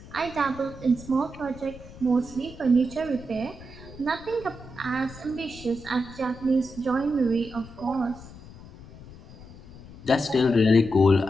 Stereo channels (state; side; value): noise; left; rumble, 17 dB below the sound